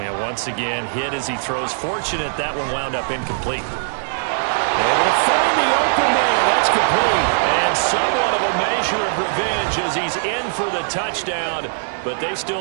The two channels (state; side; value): silent; left; digital silence